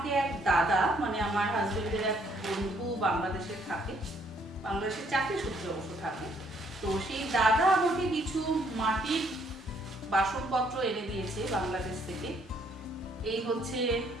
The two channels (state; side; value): normal; both; correlation 0.67